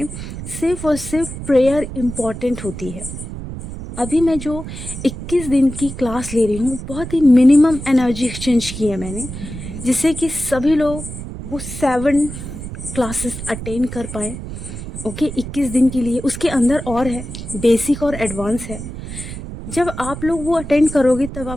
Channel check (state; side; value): noise; right; rumble, 9 dB below the sound